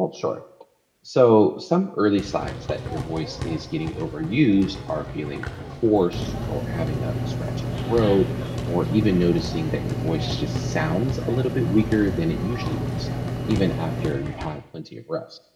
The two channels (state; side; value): identical; both; correlation 1.00